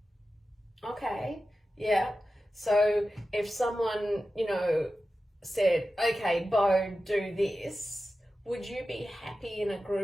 Okay, yeah. So if someone, said, okay, Beau, do this, would you be happy in a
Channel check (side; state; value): both; normal; correlation 0.93